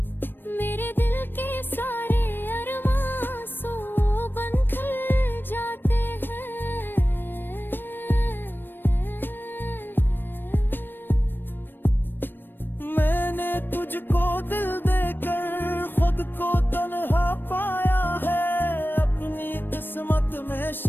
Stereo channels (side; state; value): right; late; 0.096 ms